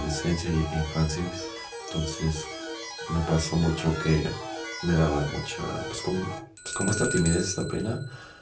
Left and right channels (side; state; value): both; identical; correlation 1.00